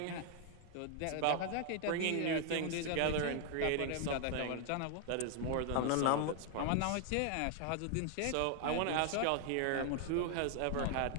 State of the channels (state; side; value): different; both; correlation 0.00